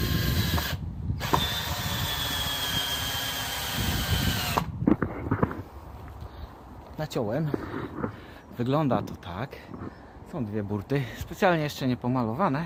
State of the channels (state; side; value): identical; both; correlation 1.00